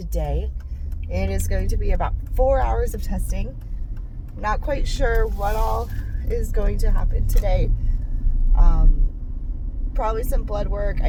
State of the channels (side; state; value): both; identical; correlation 1.00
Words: It is going to be about 4 hours of testing. Not quite sure what all is going to happen today. Probably some blood work.